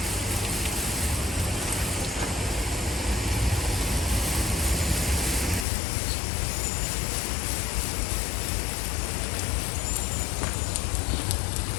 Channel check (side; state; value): right; drops out; at 5.7 s